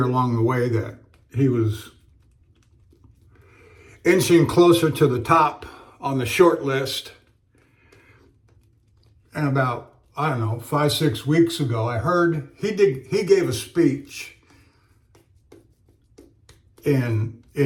along the way that he was inching closer to the top on the short list. And about, I don't know, 5-6 weeks ago, I heard he gave a speech in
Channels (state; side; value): identical; both; correlation 1.00